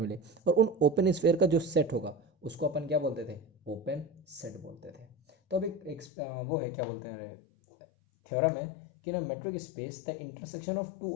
और उन ओपन स्फेयर का जो सेट होगा उसको अपन क्या बोलते थे? ओपन सेट बोलते थे। तो अब वो है, क्या बोलते हैं, थ्योरम है कि ना metric space the intersection of two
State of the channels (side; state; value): right; drops out; at 6.1 s